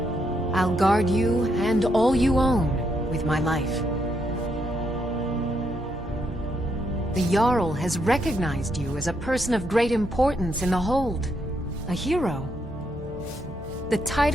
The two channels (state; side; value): normal; both; correlation 0.77